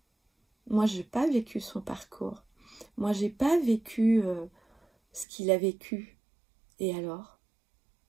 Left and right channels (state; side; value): drops out; left; at 5.2 s